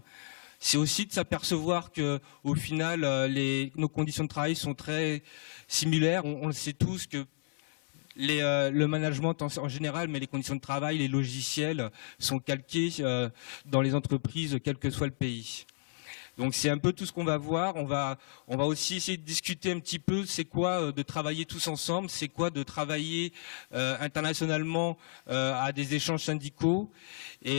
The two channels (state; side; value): silent; right; 56 dB below the other